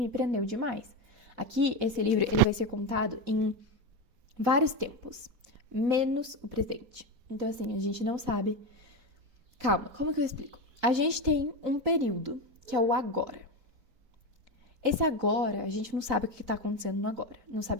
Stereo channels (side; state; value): left; late; 4.0 ms